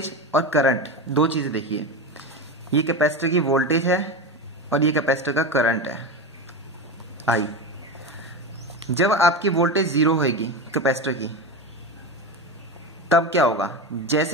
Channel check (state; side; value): normal; both; correlation 0.21